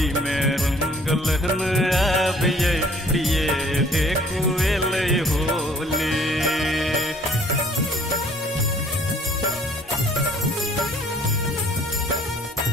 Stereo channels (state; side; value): normal; both; correlation 0.57